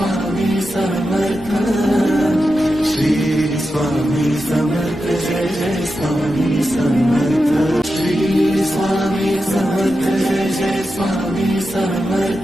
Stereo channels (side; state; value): both; normal; correlation 0.89